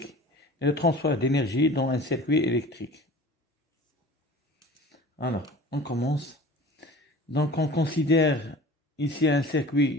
et le transfert d'énergie dans un circuit électrique. Alors, on commence. Donc on considère ici un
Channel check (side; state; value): both; normal; correlation 0.41